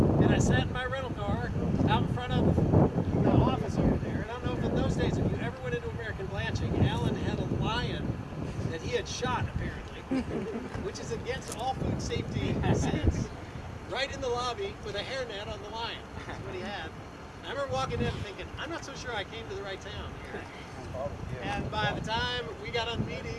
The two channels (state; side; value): identical; both; correlation 1.00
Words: and I sat in my rental car out in front of the office over there. And I don't know if in those days, if you ever went into American Blanching, Alan had a lion that he had shot, apparently, which is against all food safety sense, right in the lobby with a hairnet on the lion. That's what he had. And I remember walking in and thinking, I'm not so sure I came to the right town here. And by the time we got on the